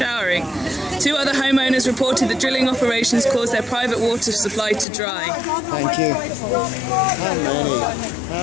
2 other homeowners reported that drilling operations caused their private water supply to dry. Thank you.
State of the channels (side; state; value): right; drops out; at 4.9 s